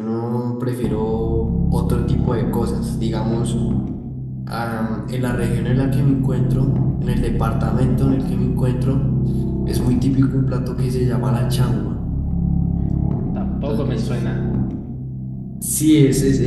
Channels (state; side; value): identical; both; correlation 1.00